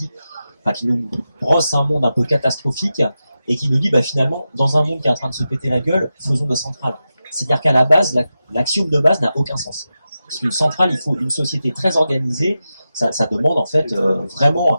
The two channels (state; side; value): inverted; both; correlation -0.91